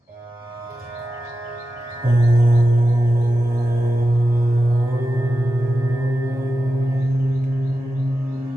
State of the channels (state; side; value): normal; both; correlation 0.91